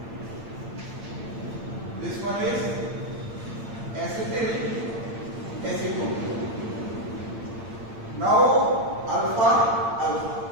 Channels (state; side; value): late; left; 8.8 ms